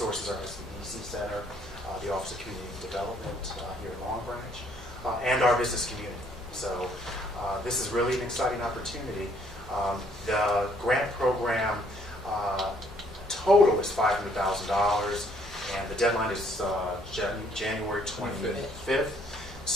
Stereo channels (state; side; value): normal; both; correlation 0.65